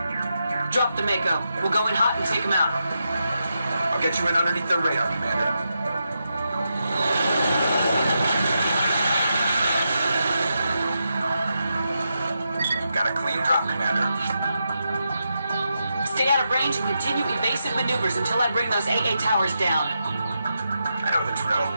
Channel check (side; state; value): both; inverted; correlation -0.86